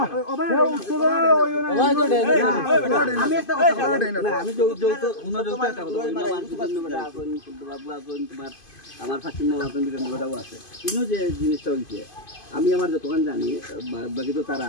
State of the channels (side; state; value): right; late; 2.5 ms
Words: ওবা তো দেনা আমি একটা কথা না আমি তো উনো তো একটা কথা বাবু আগুন তোমার আমার ফাকিম বাবা বিরান বড়াও আছে ইনো যে জিনিসটা হইছে আমি আমার যতক্ষণ জানি বাকি তো তারা